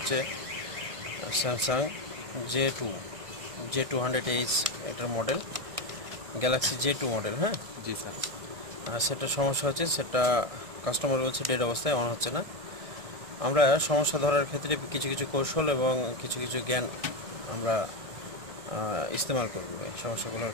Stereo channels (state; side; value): late; left; 1.6 ms